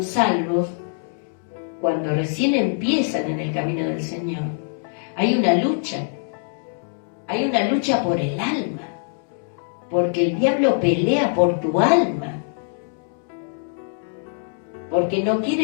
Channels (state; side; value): silent; right; digital silence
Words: salvos, cuando recién empiezan en el camino del Señor, hay una lucha por el alma, porque el diablo pelea por tu alma, porque no